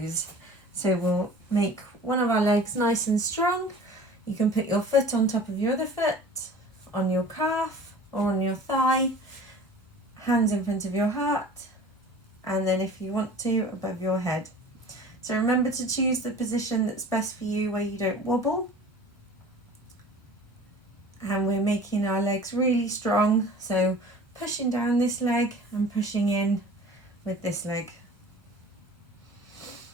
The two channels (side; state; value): both; normal; correlation 0.43